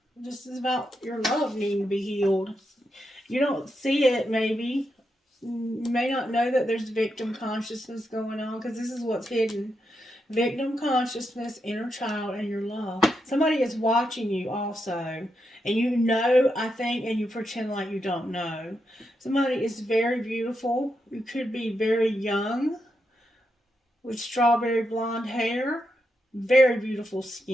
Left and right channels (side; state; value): both; normal; correlation 0.84